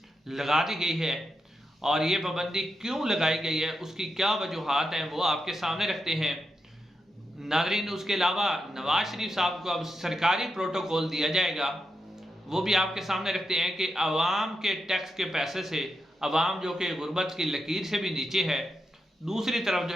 लगा दी गई है और ये पाबंदी क्यों लगाई गई है, उसकी क्या वजूहात हैं, वो आपके सामने रखते हैं नाज़रीन। उसके अलावा नवाज शरीफ साहब को अब सरकारी प्रोटोकॉल दिया जाएगा, वो भी आपके सामने रखते हैं कि आवाम के टैक्स के पैसे से आवाम जो कि गुर्बत की लकीर से भी नीचे है, दूसरी तरफ जो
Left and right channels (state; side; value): normal; both; correlation 0.86